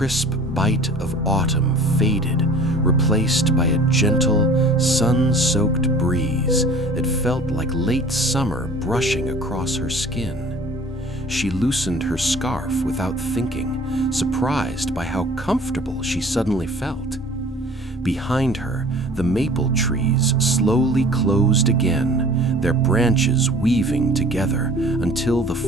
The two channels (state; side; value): normal; both; correlation 0.47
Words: bite of autumn faded, replaced by a gentle, sun-soaked breeze that felt like late summer brushing across her skin. She loosened her scarf without thinking, surprised by how comfortable she suddenly felt. Behind her, the maple trees slowly closed again, their branches weaving together until the